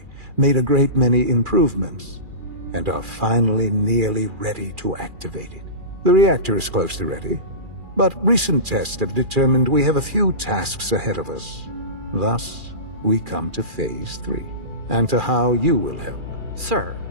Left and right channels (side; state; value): left; late; 2.4 ms